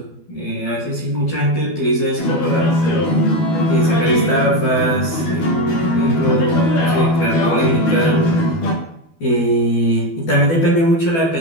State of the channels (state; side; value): late; right; 12 ms